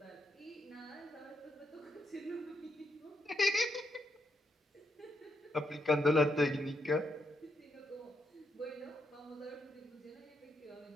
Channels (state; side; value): normal; both; correlation 0.79